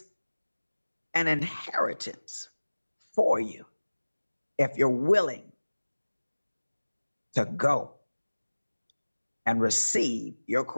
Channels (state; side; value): inverted; both; correlation -1.00